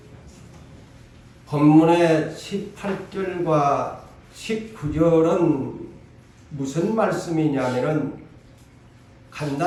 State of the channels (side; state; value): both; identical; correlation 1.00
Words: 본문의 18절과 19절은 무슨 말씀이냐면은